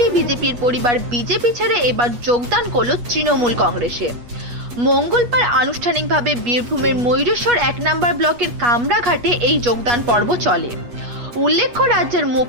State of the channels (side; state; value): left; late; 8.3 ms